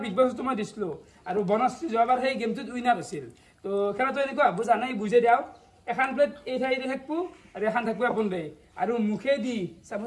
বিগ বছটো মই দিছিলো আৰু বনশ্ৰী যোৱাবাৰ সেই গেমটোত উইনাৰ হৈছিল তো খেলাটো এনেকুৱা বুজা নাই বুজাই দিওঁ এখন প্লেট এই ঠাইতে থাকবো আৰু এখন থাকবো আপোন দে আৰু মুখেদি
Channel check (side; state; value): both; identical; correlation 1.00